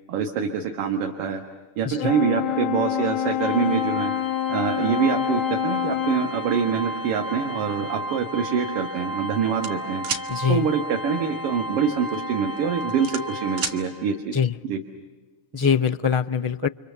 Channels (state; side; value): late; left; 7.2 ms